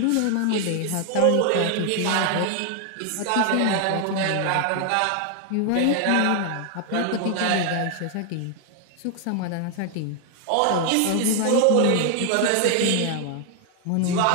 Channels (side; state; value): both; different; correlation 0.00